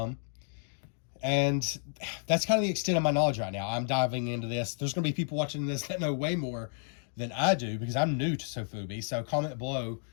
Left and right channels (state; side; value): silent; right; 57 dB below the other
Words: And that's kind of the extent of my knowledge right now. I'm diving into this. There's going to be people watching this that know way more than I do because I'm new to Sofubi. So comment below,